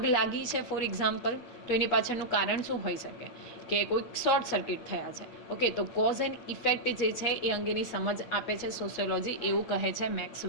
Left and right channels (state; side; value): late; right; 8.4 ms